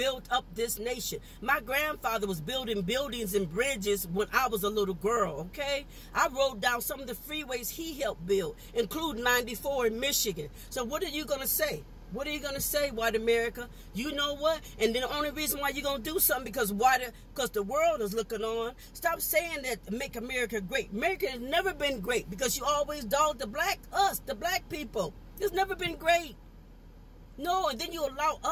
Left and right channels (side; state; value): both; identical; correlation 1.00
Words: up this nation. My grandfather was building buildings and bridges when I was a little girl, okay? I rode down some of the freeways he helped build, including 94 in Michigan. So what are you going to say? What are you going to say, white America? You know what? And then the only reason why you're going to do something because the world is looking on. Stop saying that make America great. America has never been great because you always dog the black people. It's never been great. No, and then you allow